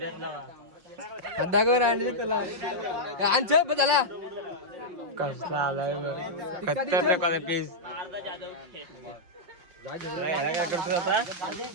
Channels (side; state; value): left; late; 5.8 ms